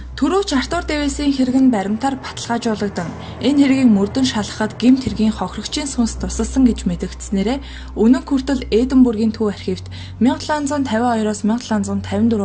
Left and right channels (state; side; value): identical; both; correlation 1.00